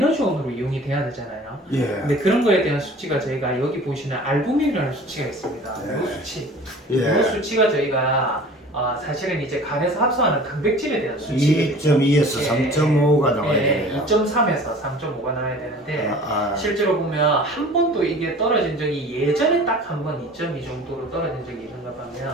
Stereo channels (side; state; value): both; normal; correlation 0.44